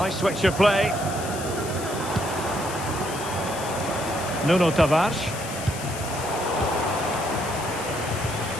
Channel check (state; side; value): noise; left; hiss, 11 dB below the sound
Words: switch of play. Nuno Tavares.